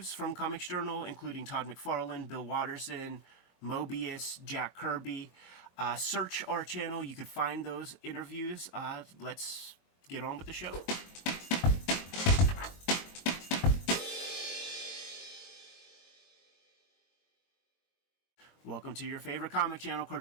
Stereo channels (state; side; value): late; right; 22 ms